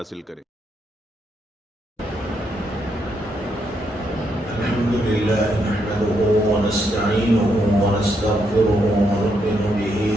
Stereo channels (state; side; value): normal; both; correlation 0.78